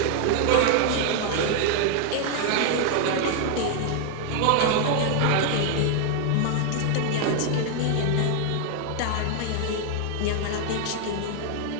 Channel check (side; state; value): both; different; correlation 0.00